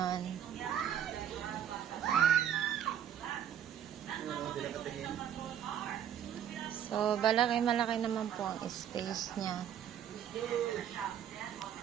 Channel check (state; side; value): quieter; left; 9.6 dB